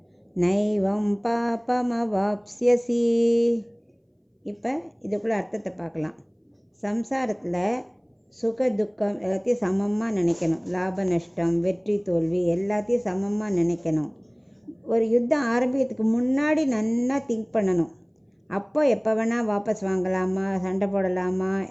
நைவம் பாபமவாப்ஸ்யசி. இப்போ இதுக்குள்ள அர்த்தத்தை பார்க்கலாம். சம்சாரத்தில் சுக துக்கம் எல்லாத்தையும் சமமாக நினைக்கணும். லாப நஷ்டம், வெற்றி தோல்வி எல்லாத்தையும் சமமாக நினைக்கணும். ஒரு யுத்தம் ஆரம்பிக்கிறதுக்கு முன்னாடி நல்லா திங்க் பண்ணணும். அப்போ எப்போ வேணால் வாபஸ் வாங்கலாமா, சண்டை போடலாமா,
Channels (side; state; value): both; identical; correlation 1.00